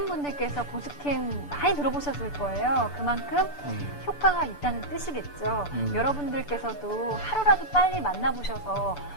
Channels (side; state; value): right; late; 6.9 ms